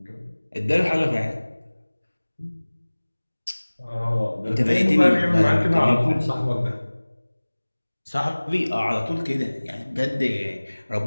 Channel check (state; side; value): inverted; both; correlation -1.00